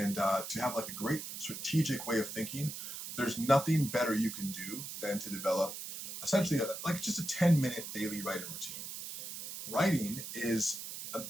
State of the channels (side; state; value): right; noise; hiss, 8 dB below the sound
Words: to have like a great strategic way of thinking, there's nothing better you can do than to develop essentially like just a 10-minute daily writing routine. Writing is an